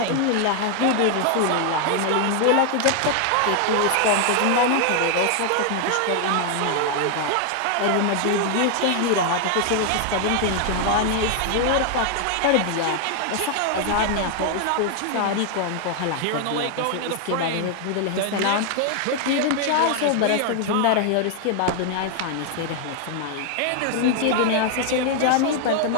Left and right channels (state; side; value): different; both; correlation 0.00